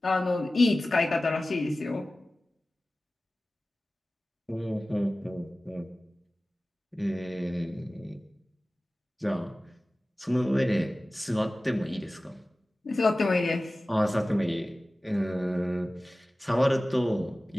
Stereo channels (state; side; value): normal; both; correlation 0.97